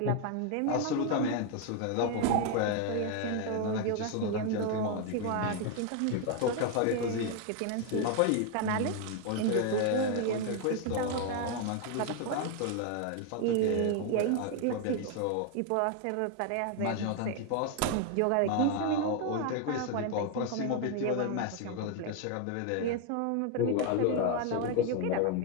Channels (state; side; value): different; both; correlation 0.01